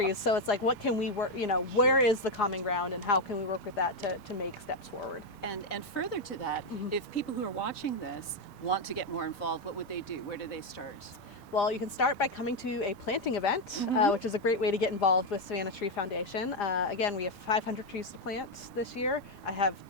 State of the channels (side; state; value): both; normal; correlation 0.04